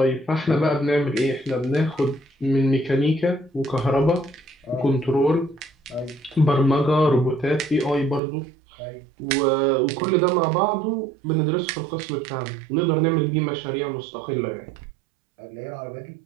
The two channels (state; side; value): drops out; left; at 8.2 s